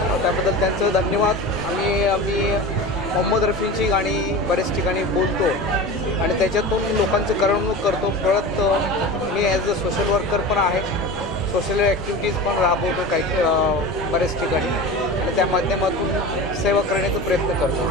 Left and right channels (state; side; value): noise; left; rumble, 16 dB below the sound